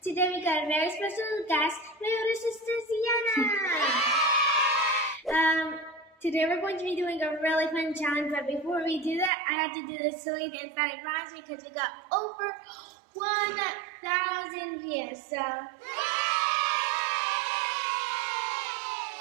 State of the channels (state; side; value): drops out; left; at 9.3 s